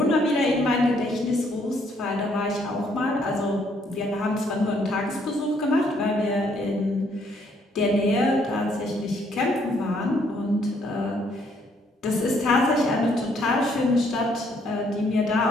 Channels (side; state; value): both; normal; correlation 0.68